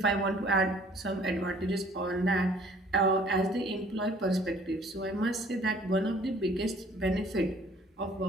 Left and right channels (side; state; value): both; normal; correlation 0.55